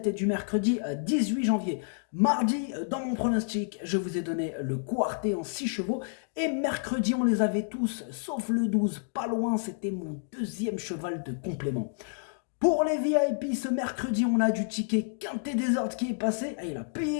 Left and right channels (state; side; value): silent; right; digital silence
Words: et du mercredi 18 janvier. Mardi, dans mon pronostic, je vous ai donné le quartet en 6 chevaux. Et mercredi, on les avait tous, sauf le 12. Pas loin, c'était mon deuxième cheval de complément. Pour les VIP, ce mercredi, on a du ticket Quintet Désordre qui est passé. Ah, il a